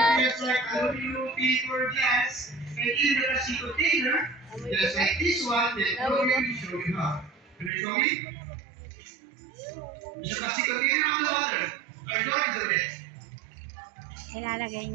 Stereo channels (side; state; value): left; drops out; at 7.7 s